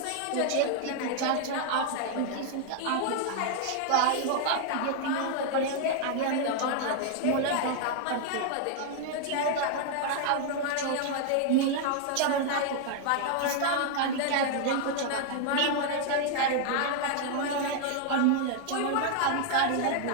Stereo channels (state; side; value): different; both; correlation 0.00